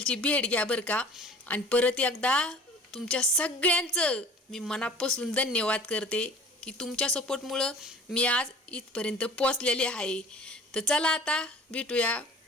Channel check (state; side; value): normal; both; correlation 0.46